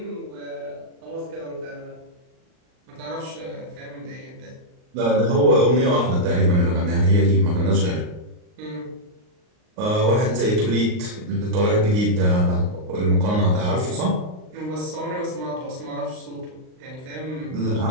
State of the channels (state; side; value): late; left; 39 ms